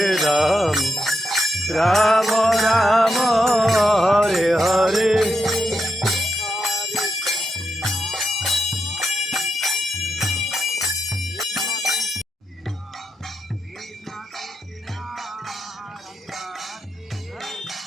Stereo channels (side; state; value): both; normal; correlation 0.84